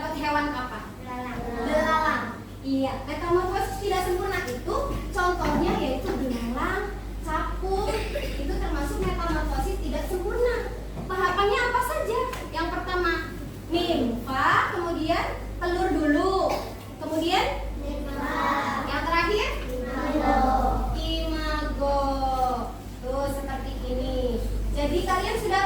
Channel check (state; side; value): identical; both; correlation 1.00